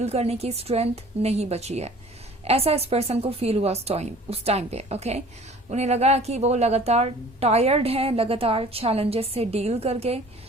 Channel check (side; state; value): both; normal; correlation 0.48